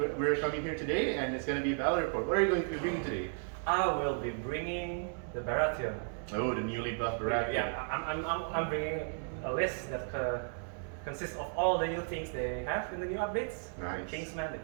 coming here today, and it's going to be a battle report. What are you going to be bringing today? I will be bringing the Baratheon. Oh, the newly buffed Baratheon. Yeah, I'm bringing a list that consists of all the new things they have in the new updates. Nice. The Kingsman, the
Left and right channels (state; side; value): silent; left; 55 dB below the other